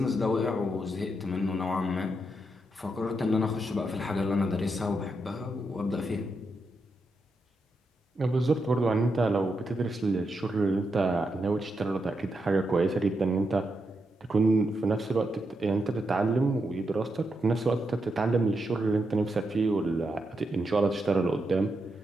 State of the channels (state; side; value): normal; both; correlation 0.84